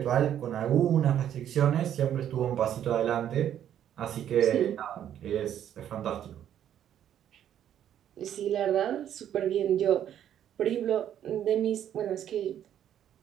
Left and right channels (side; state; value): left; quieter; 10.3 dB